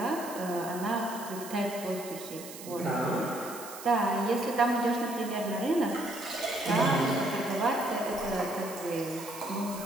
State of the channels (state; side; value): noise; right; hiss, 13 dB below the sound